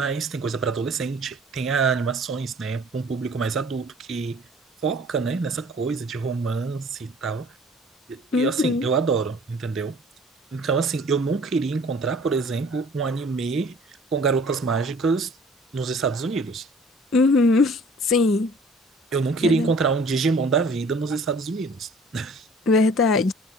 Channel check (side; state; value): both; normal; correlation 0.51